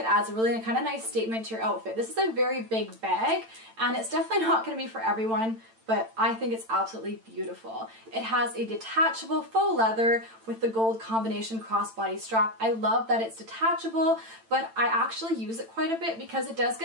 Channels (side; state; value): left; late; 8.9 ms